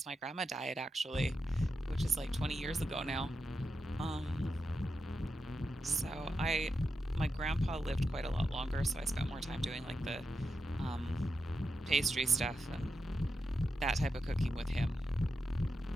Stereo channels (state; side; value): normal; both; correlation 0.88